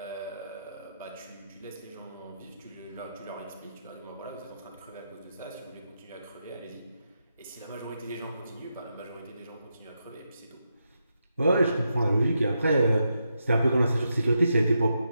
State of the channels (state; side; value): inverted; both; correlation -0.84